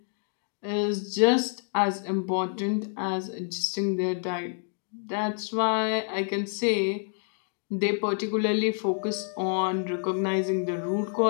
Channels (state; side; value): silent; right; 59 dB below the other